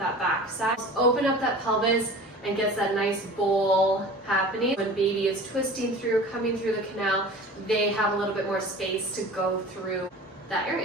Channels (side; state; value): both; normal; correlation 0.39